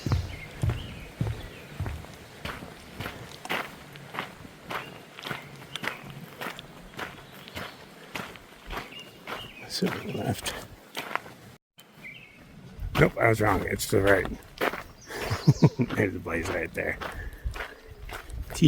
Assuming left. Nope, I was wrong. It's to the right. There's the blaze right there.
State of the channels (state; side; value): identical; both; correlation 1.00